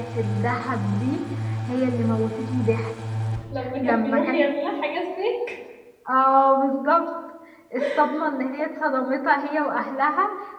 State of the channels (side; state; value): both; identical; correlation 1.00